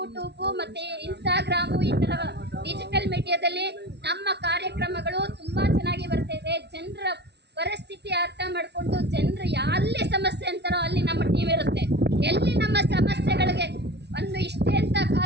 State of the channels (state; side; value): late; left; 0.49 ms